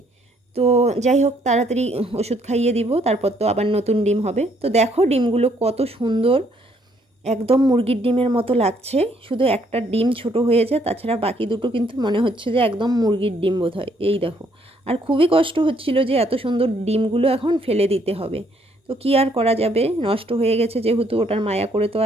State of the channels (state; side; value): normal; both; correlation 0.68